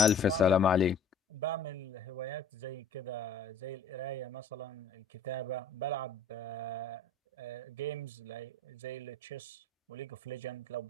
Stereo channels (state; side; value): quieter; right; 4.2 dB